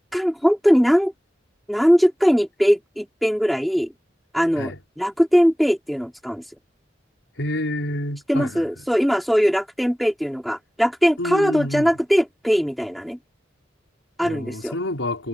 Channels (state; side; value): normal; both; correlation 0.97